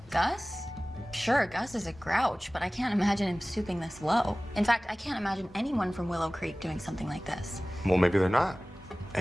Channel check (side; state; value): both; normal; correlation 0.98